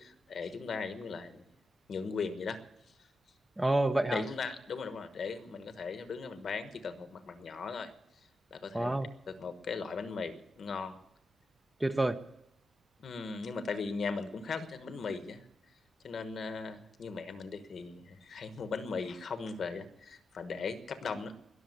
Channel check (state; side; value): normal; both; correlation 0.88